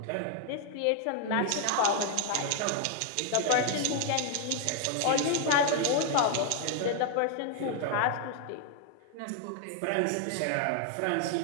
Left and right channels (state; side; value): different; both; correlation 0.00